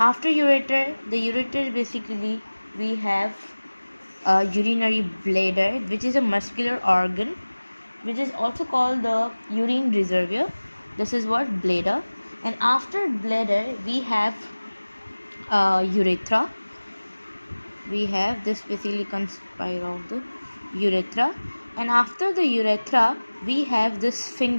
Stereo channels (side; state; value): both; inverted; correlation -1.00